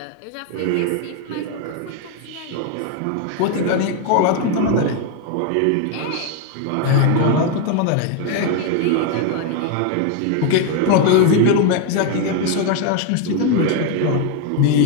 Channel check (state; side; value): different; both; correlation 0.01